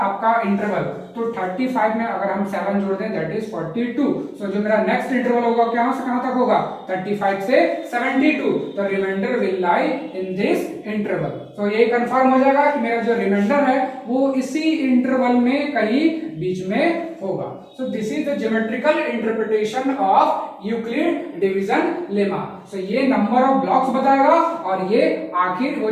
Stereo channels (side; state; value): both; identical; correlation 1.00